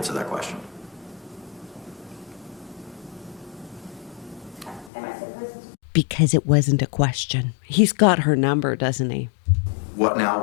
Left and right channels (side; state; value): right; drops out; at 4.9 s